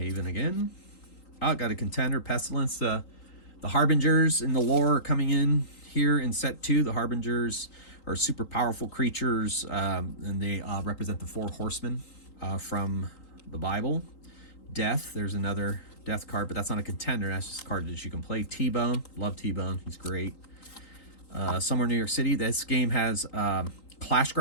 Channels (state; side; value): late; right; 3.8 ms